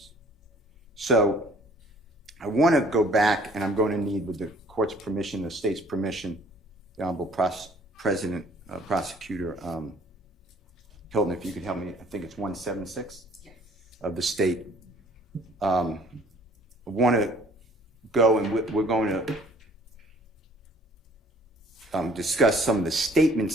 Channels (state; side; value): normal; both; correlation 0.56